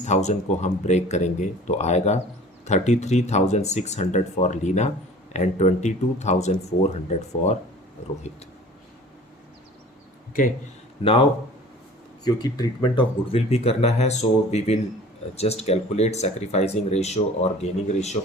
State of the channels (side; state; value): both; normal; correlation 0.45